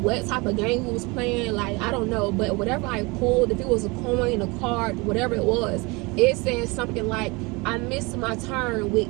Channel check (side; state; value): left; quieter; 26.0 dB